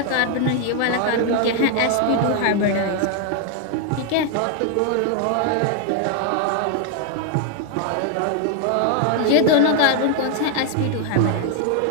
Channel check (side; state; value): both; different; correlation 0.00